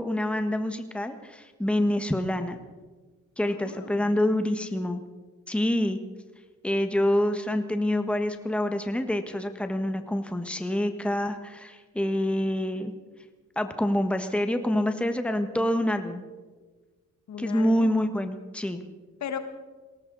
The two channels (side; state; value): both; normal; correlation 0.91